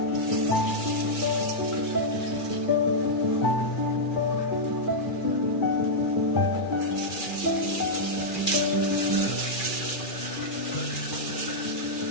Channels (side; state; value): right; late; 2.4 ms